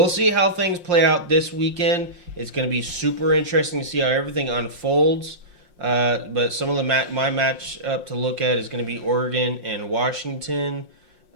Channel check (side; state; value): left; late; 5.7 ms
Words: see how things play out this weekend. It's going to be super interesting to see how everything unfolds. But some of the my match up to look at is going to be Oregon and Washington